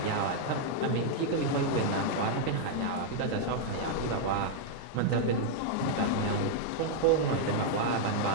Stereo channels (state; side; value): different; both; correlation -0.01